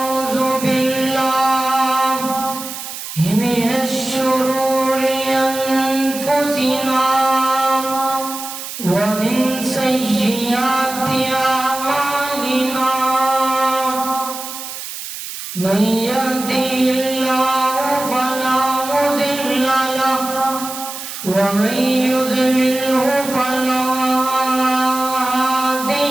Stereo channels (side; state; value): right; noise; hiss, 9 dB below the sound